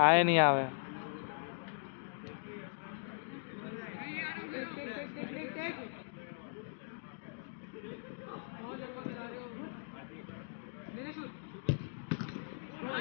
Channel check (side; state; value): right; silent; digital silence